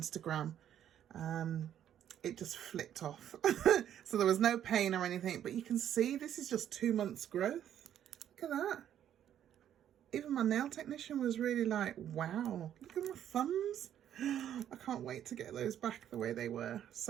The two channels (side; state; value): left; quieter; 10.4 dB